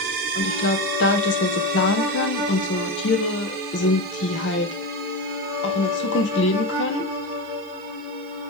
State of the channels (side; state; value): right; noise; hiss, 29 dB below the sound